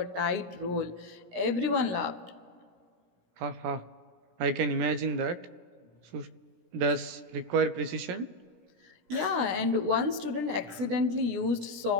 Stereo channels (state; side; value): late; left; 17 ms